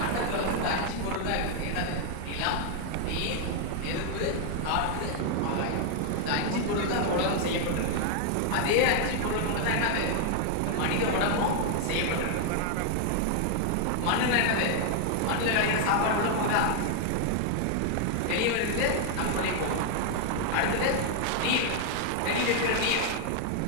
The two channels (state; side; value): different; both; correlation 0.00